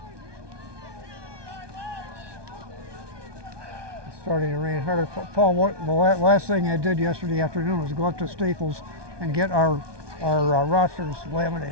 It's starting to rain harder. Paul, the last thing I did yesterday afternoon was go up to Staples and get our rosters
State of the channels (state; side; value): late; left; 1.2 ms